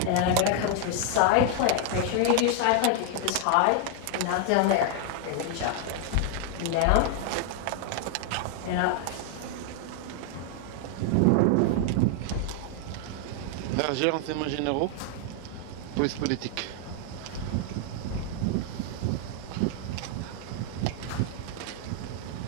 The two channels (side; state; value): both; different; correlation 0.00